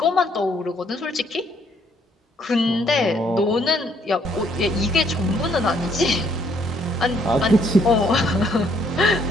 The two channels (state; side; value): normal; both; correlation 0.67